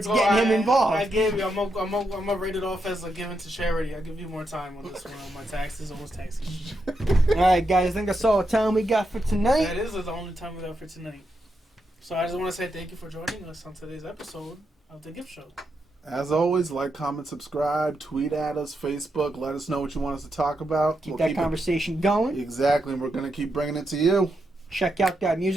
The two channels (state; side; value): normal; both; correlation 0.83